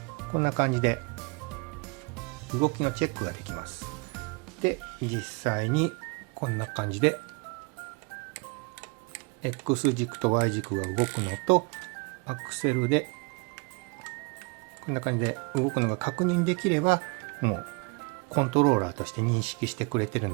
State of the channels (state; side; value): quieter; left; 30.3 dB